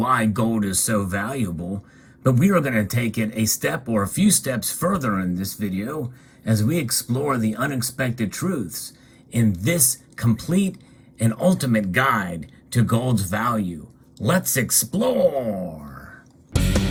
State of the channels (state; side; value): identical; both; correlation 1.00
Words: gold is so valuable, but we are going to take it a step or a few steps further in this video as we explore the unexpected truths in this complete and ultimate guide to gold's value. Let's explore!